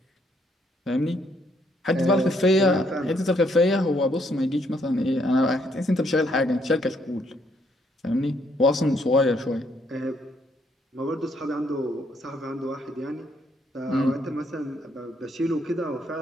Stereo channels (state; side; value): normal; both; correlation 0.71